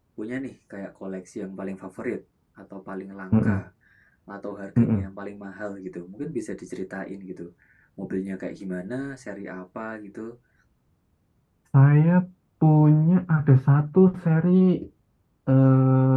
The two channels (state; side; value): identical; both; correlation 1.00